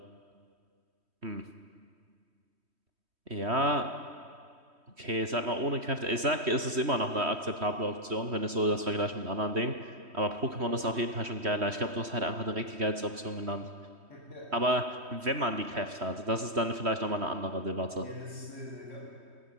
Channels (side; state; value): left; late; 3.1 ms